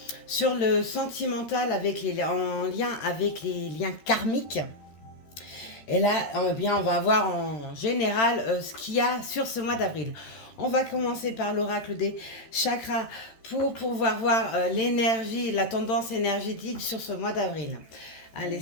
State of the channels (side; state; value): right; late; 13 ms